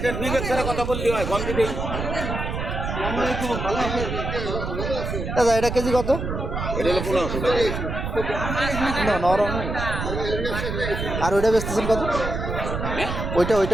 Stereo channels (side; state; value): right; noise; rumble, 4 dB below the sound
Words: বিবেক ছাড়া কথা বললে হয়, কম দিলেই। দাদা এটা কেজি কত? এটা হলো 1500 টাকা। না নরম। আর ওইটা বেচতেছেন কত? হ্যাঁ, ওইটা